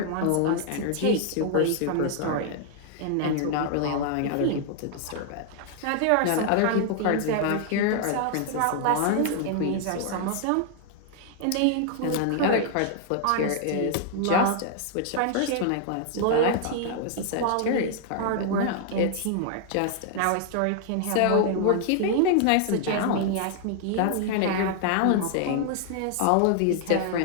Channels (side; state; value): both; different; correlation 0.00